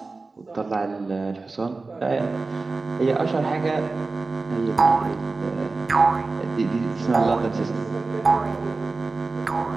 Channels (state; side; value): quieter; left; 3.7 dB